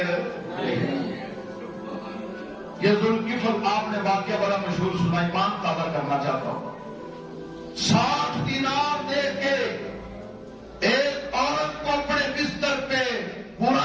یہ ذوالکفل آپ نے واقعہ بڑا مشہور سنا، ایمان تازہ کرنا چاہتا ہوں۔ 60 دینار دے کے ایک عورت کو اپنے بستر پہ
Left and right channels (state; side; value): identical; both; correlation 1.00